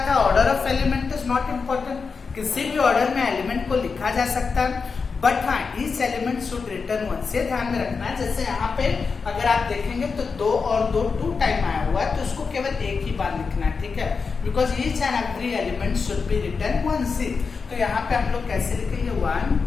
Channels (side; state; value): right; quieter; 5.0 dB